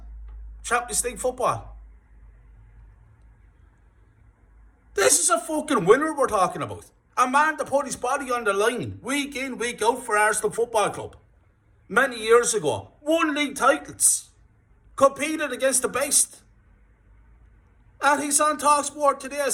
Champions League football. This is a fucking winner we're talking about. A man that put his body on the line week in, week out for Arsenal Football Club. Many years ago. Won league titles. Competed against the best. And he's on TalkSport today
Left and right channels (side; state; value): both; identical; correlation 1.00